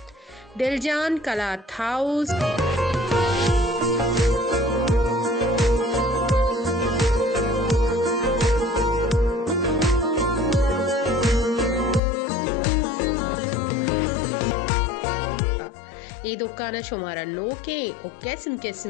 Diljan Kalat house ये दुकान शुमारा नोके और किस्म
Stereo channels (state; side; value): drops out; right; at 12.0 s